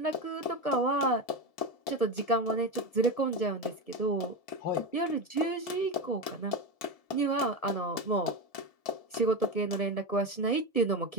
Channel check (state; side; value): late; right; 1.7 ms